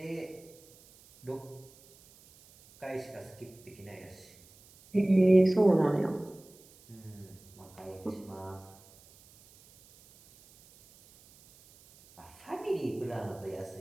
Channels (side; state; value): right; noise; hiss, 25 dB below the sound